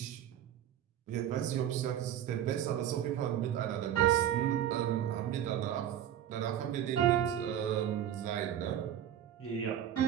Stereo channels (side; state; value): left; quieter; 10.6 dB